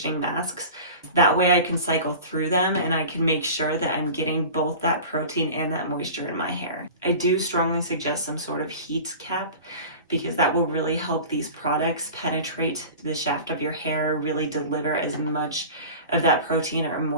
masks. That way I can cycle through them and I can make sure that I'm getting both that protein and that moisture in my hair. I do strongly suggest some sort of heat cap because that will really help these products penetrate the shaft of your hair, really deliver as much of that protein or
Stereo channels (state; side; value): inverted; both; correlation -0.37